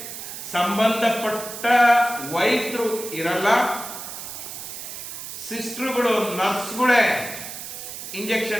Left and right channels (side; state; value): right; noise; hiss, 9 dB below the sound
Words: ಸಂಬಂಧಪಟ್ಟ ವೈದ್ಯರು ಇರಲ್ಲ, ಸಿಸ್ಟರ್ಗಳು ನರ್ಸ್ಗಳೇ